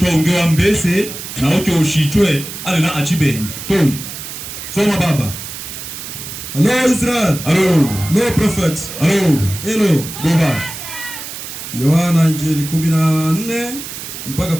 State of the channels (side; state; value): right; noise; hiss, 10 dB below the sound